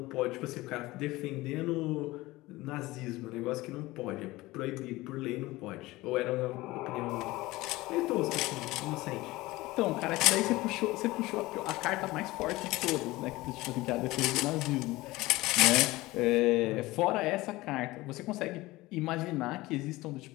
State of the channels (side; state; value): right; quieter; 19.5 dB